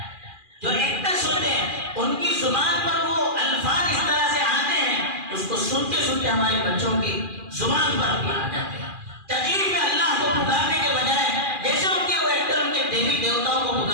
جو ایکٹرس ہوتے ہیں ان کی زبان پر وہ الفاظ اس طرح سے آتے ہیں، اس کو سنتے سنتے ہمارے بچوں کی زبان پر بھی آ جاتے ہیں۔ تقریر میں اللہ کو پکارنے کے بجائے جیسے ان کے وہ ایکٹر ان کے دیوی دیوتاؤں کو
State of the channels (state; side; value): late; left; 2.4 ms